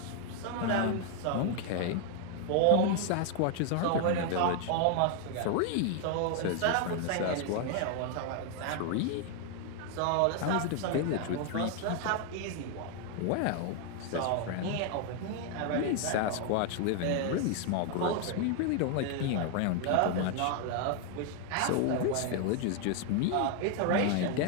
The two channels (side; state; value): both; different; correlation 0.00